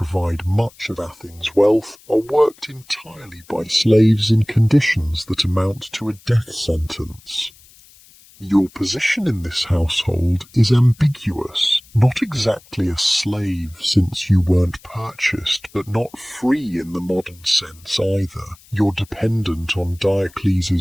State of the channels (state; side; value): noise; left; hiss, 26 dB below the sound